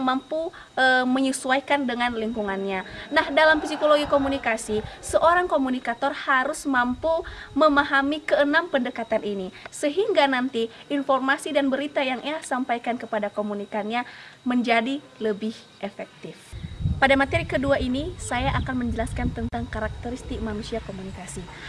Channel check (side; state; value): both; identical; correlation 1.00